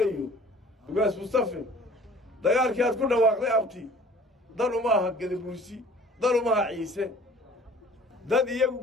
أيوه وقاس مصطفى دجال كي كله واقع أبتي ضلوا معها قد بوليسي ضلوا معها عيسى dad iyagu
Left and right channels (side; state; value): both; normal; correlation 0.49